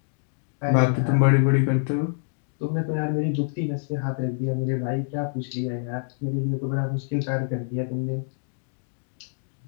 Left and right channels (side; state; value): right; silent; digital silence